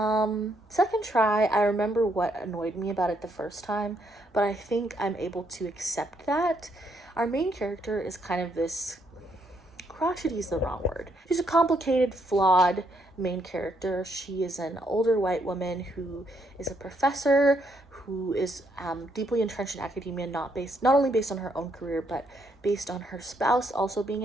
try, I remember what annoyed me about it the first time, but I think I'm able to accept that. Our main character is kind of this, crotchety is the wrong word. She's a complicated, flawed main character. She is an older white woman who is a professor, who is deeply entrenched in academia, not only based on her own career, but based on her spouse also being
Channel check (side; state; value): both; normal; correlation 0.73